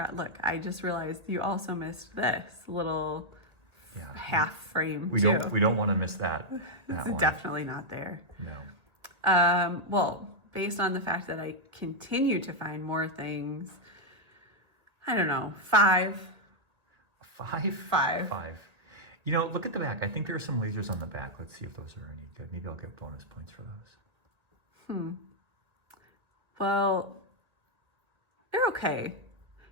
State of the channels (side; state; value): left; late; 2.0 ms